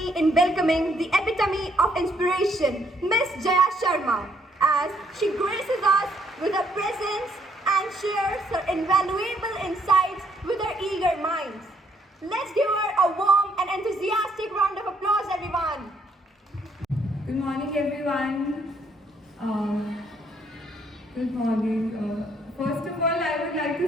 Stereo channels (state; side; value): normal; both; correlation 0.69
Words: in welcoming the epitome of inspiration, Miss Jaya Sharma, as she graces us with her presence and shares her invaluable insights with her eager minds. Let's give her a warm and enthusiastic round of applause, everyone. Good morning, everyone. Good morning. First of all, I would like